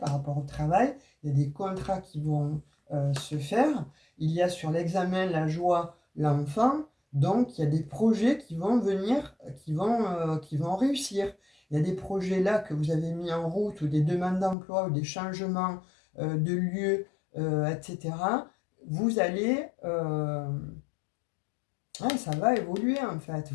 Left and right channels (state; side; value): drops out; right; at 14.6 s